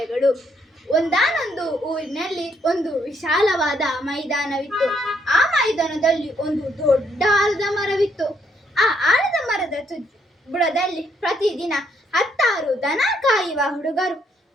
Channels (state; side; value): normal; both; correlation 0.72